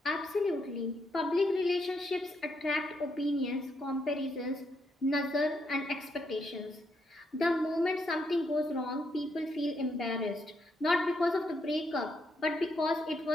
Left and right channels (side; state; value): both; normal; correlation 0.78